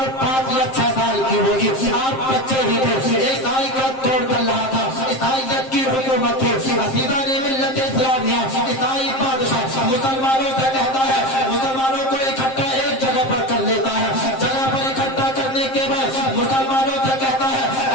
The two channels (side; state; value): right; late; 7.6 ms